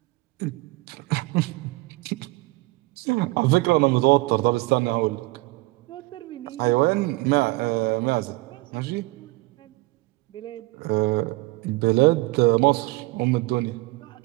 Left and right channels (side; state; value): left; quieter; 22.3 dB